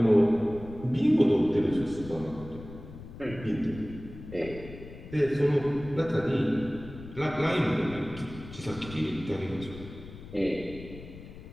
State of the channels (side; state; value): left; noise; rumble, 15 dB below the sound